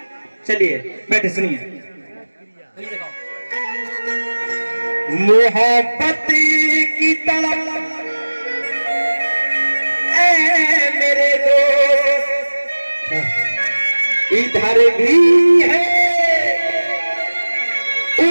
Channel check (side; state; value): both; inverted; correlation -1.00